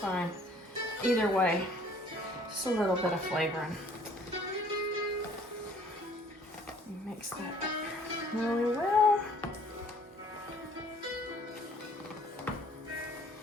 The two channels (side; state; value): both; normal; correlation 0.57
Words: Either way, just a little bit of flavoring. Mix that up really well.